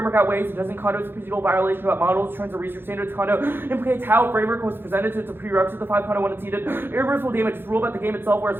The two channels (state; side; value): late; left; 0.10 ms